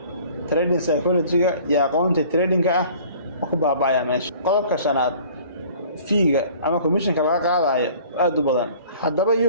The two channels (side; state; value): both; inverted; correlation -0.50